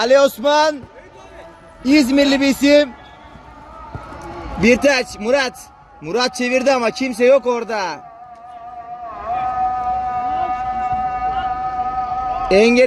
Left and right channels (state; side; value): identical; both; correlation 1.00